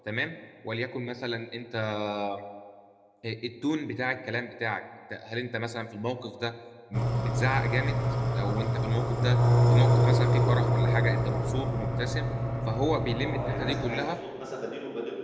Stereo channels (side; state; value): both; identical; correlation 1.00